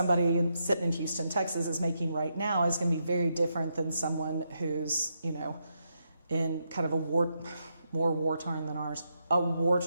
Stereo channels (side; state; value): both; inverted; correlation -0.82